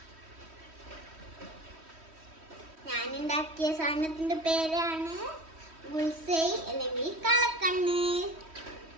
ഞാനുണ്ടാക്കിയ സാധനത്തിന്റെ പേരാണ് ബുൾസൈ അല്ലെങ്കിൽ കളക്കണ്ണ്.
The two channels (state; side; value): late; left; 3.1 ms